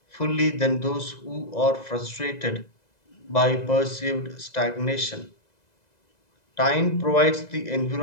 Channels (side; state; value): right; late; 2.0 ms